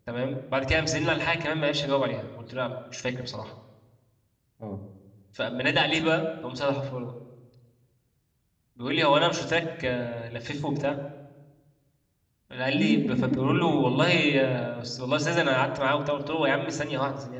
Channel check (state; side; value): identical; both; correlation 1.00